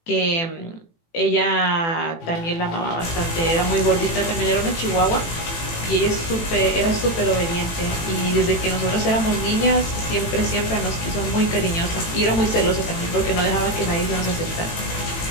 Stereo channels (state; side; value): late; right; 18 ms